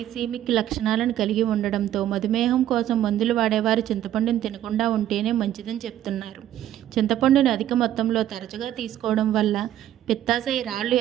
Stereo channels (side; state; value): left; quieter; 12.0 dB